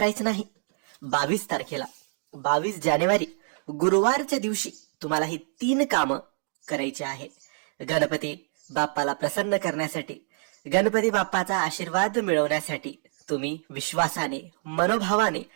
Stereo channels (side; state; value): left; silent; 60 dB below the other